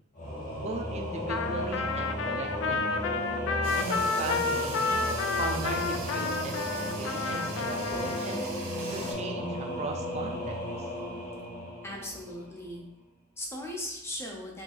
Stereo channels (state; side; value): normal; both; correlation 0.30